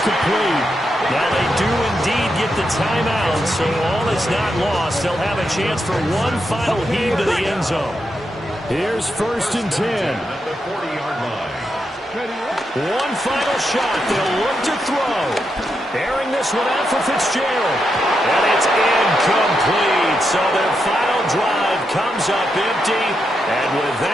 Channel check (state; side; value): normal; both; correlation 0.84